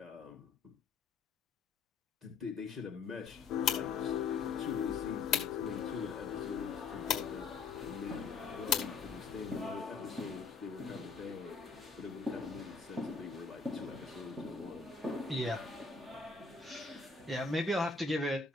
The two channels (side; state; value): right; quieter; 4.6 dB